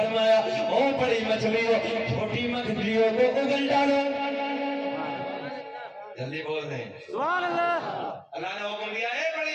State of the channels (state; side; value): identical; both; correlation 1.00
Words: او بڑی مچھلیوں چھوٹی مچھلیوں کو اگل ڈالو. جلدی بول دیں سبحان اللہ. اللہ نے حکم دیا ہے,